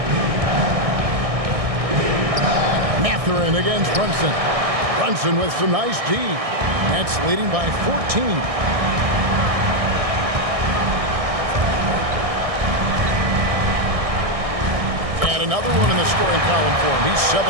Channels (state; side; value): late; left; 1.6 ms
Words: Mathurin against Brunson. Brunson with some nice D. Nets leading by 14. And another one in the scoring column for him. He's 7